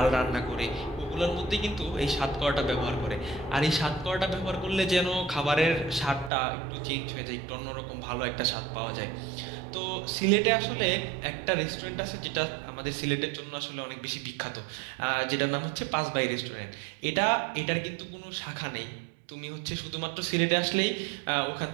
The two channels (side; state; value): left; drops out; at 6.3 s